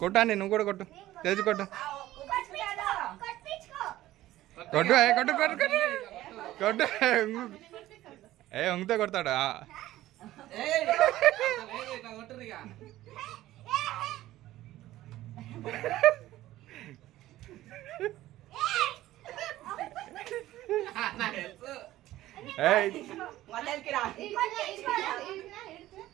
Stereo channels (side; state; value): left; quieter; 15.2 dB